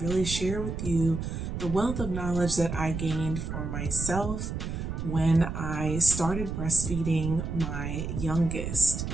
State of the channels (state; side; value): noise; right; rumble, 5 dB below the sound